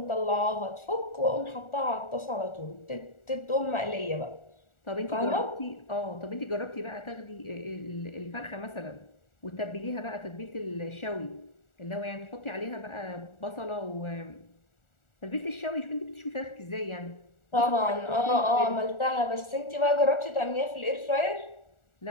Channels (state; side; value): late; right; 1.4 ms